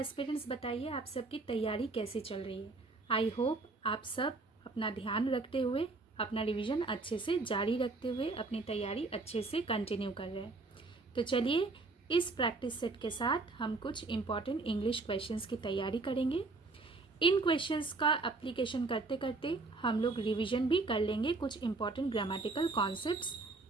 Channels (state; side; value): quieter; left; 3.6 dB